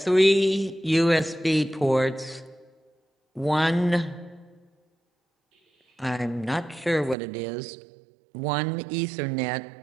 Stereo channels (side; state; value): left; drops out; at 7.2 s